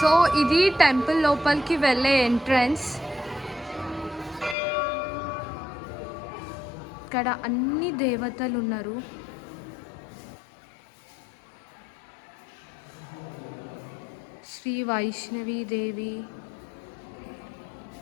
ఇది టెంపుల్ లోపలికి వెళ్ళే ఎంట్రన్స్. ఇక్కడ అన్ని దేవతలు ఉన్నారు. శ్రీ వైష్ణవి దేవి,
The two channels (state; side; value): drops out; right; at 4.5 s